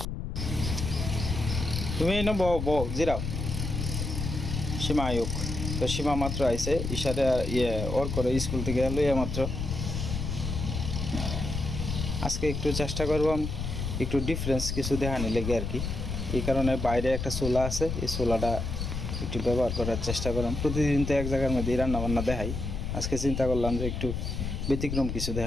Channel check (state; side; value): noise; left; rumble, 3 dB below the sound